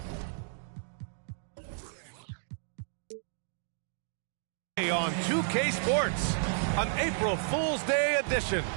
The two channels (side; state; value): left; silent; digital silence